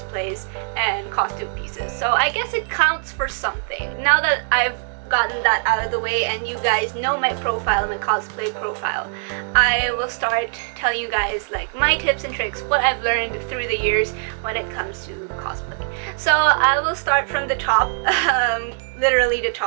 and costume pieces. So I guess it counts for something. Now that I've gotten that out of the way and you guys know my profile, my cosplay profile, I will start telling you guys like my tips and tricks, what I've learned through the years when it comes to cosplay. So I will start from the top, literally the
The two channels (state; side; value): silent; left; 65 dB below the other